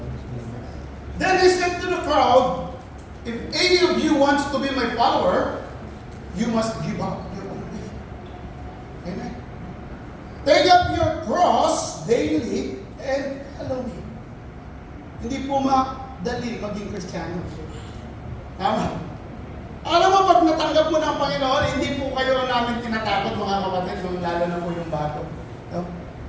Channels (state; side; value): identical; both; correlation 1.00